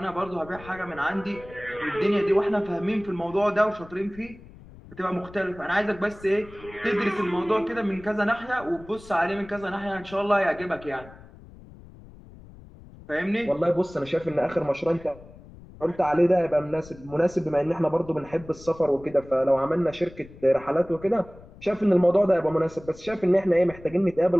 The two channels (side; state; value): left; noise; rumble, 20 dB below the sound